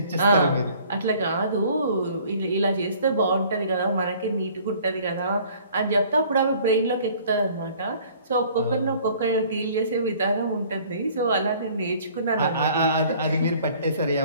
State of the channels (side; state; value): both; inverted; correlation -0.54